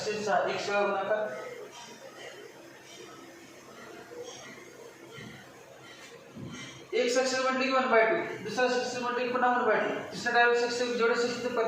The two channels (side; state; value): both; identical; correlation 1.00